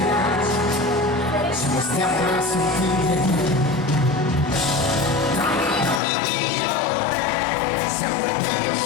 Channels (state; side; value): drops out; right; at 6.0 s